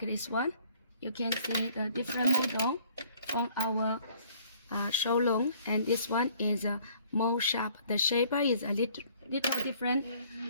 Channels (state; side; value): inverted; both; correlation -0.59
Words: this one, you can see the different model from our showroom, and this one is more sharp. The shape is a little different